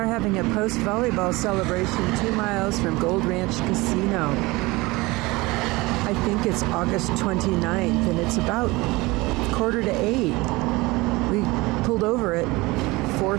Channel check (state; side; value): quieter; left; 22.2 dB